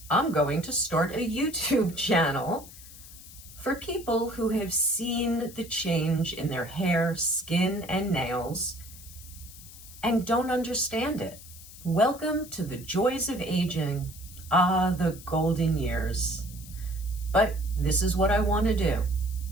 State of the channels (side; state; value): left; noise; hiss, 17 dB below the sound